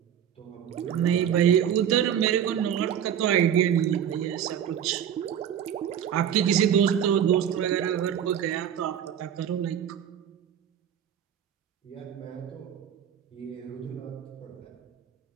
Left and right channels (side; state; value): left; quieter; 9.4 dB